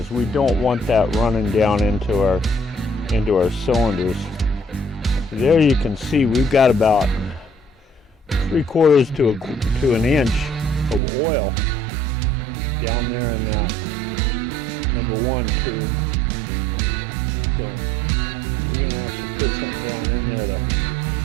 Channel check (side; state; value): left; drops out; at 11.0 s